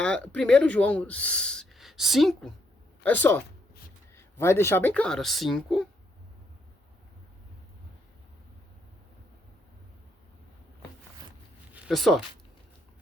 João 5, olha só, vai deixar bem claro, 5, olha só,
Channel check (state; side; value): normal; both; correlation 0.75